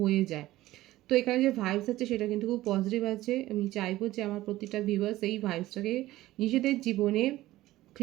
যায়। তো এখানে যে ভাইবস আছে সেটা কিন্তু খুব পজিটিভ আছে। আমি চাইবো যে আমার প্রতিটা ভিউয়ার্স এই ভাইবসটাকে নিজেদের জীবনে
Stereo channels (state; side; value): quieter; left; 16.3 dB